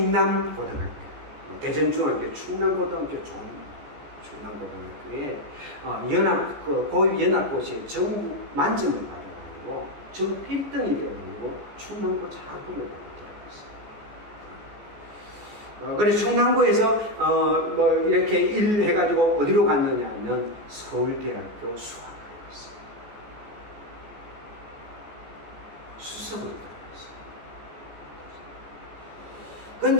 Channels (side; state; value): left; late; 14 ms